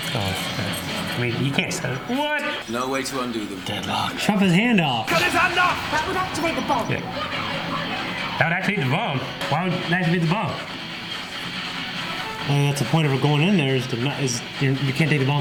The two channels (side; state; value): both; identical; correlation 1.00